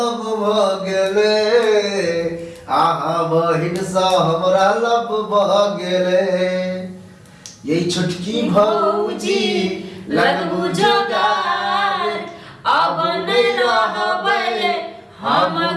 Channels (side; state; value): both; identical; correlation 1.00